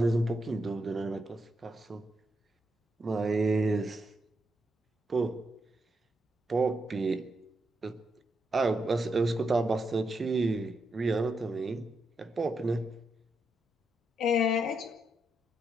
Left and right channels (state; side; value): normal; both; correlation 0.82